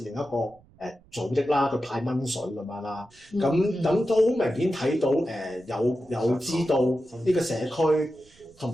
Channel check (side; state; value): right; noise; rumble, 29 dB below the sound